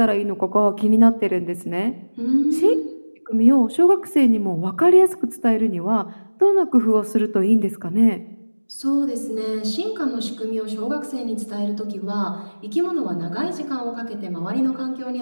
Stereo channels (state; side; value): inverted; both; correlation -1.00